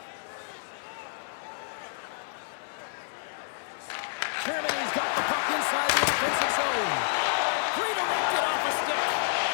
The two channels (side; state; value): right; silent; digital silence